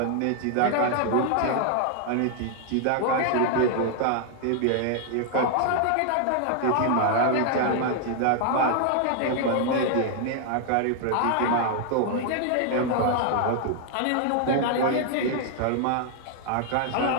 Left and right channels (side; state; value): both; different; correlation 0.00